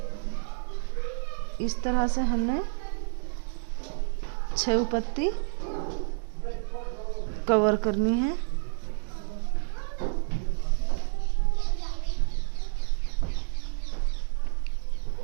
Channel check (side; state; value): left; silent; digital silence